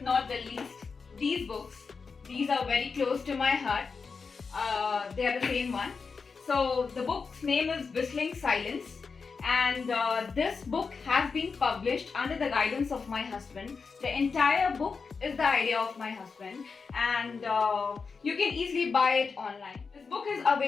not the least, these books, these are very close to my heart. They are the same one. So the book's name is Whistling Silence, and this book has been published under the guidance of my husband. The entire book is the idea of my husband, and you can easily buy it online. This book is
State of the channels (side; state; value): right; quieter; 5.0 dB